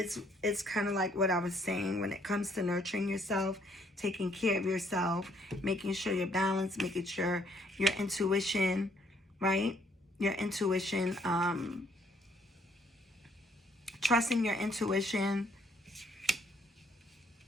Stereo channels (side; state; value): both; normal; correlation 0.67